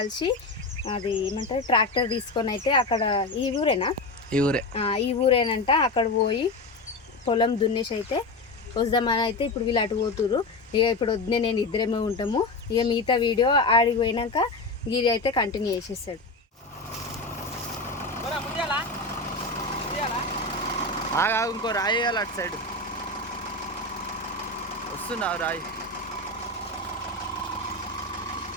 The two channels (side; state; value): right; quieter; 3.0 dB